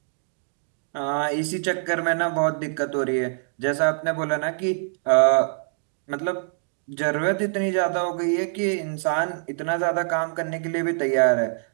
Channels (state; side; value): silent; left; digital silence